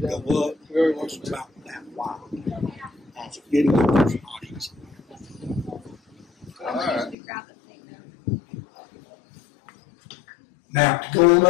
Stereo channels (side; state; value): right; drops out; at 7.2 s